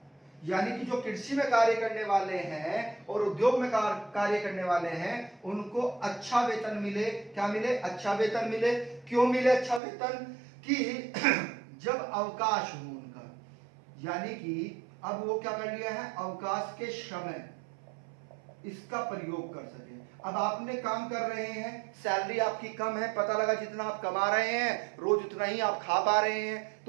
यानी कि जो कृषि में कार्य करने वाले हैं और उद्योग में कार्य करने वाले हैं, उनको अच्छा वेतन मिले। क्या मिले? अच्छा वेतन मिले। क्यों मिले अच्छा वेतन? कि जब अवकाश हो उनका, यानी कि अब वो क्या कर लिया है? अवकाश के समय इसका प्रयोग कर सके। अब आपने काम कर रहे हैं, सैलरी आपकी कम है, पता लगा जितना आप कमा रहे हैं रोज उतना ही आप खा पा रहे हैं,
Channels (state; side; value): drops out; left; at 9.8 s